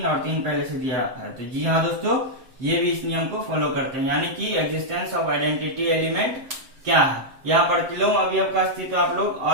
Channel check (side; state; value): left; late; 7.6 ms